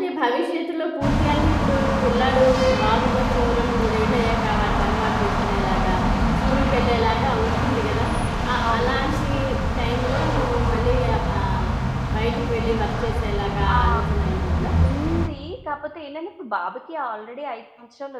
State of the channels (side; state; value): both; identical; correlation 1.00